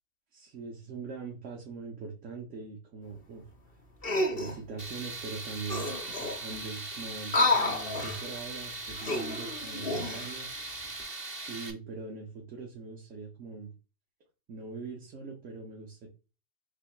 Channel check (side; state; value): right; late; 2.7 ms